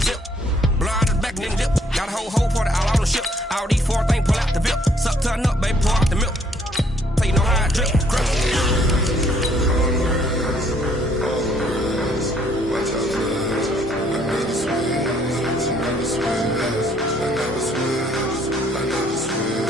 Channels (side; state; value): both; normal; correlation 0.65